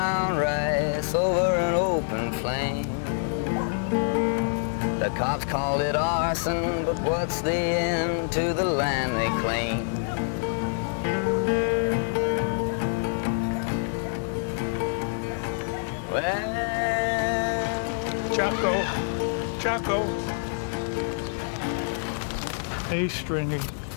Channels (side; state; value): right; silent; digital silence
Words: rice over an open flame. The cops called it arson, but what's the end to the land they claim? Well... Chaco. Hey, Stringy.